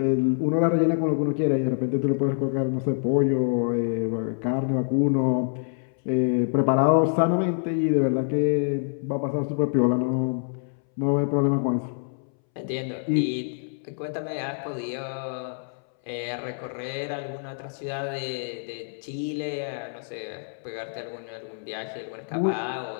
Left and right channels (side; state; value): right; silent; 61 dB below the other